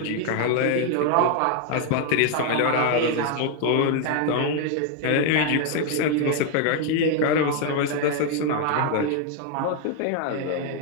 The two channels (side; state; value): both; different; correlation 0.00